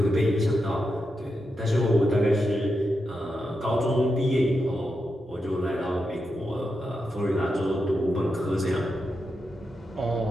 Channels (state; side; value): normal; both; correlation 0.87